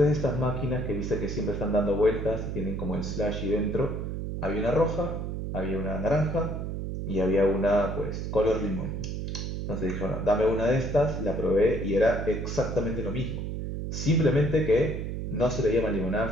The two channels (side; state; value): right; noise; hum, 4 dB below the sound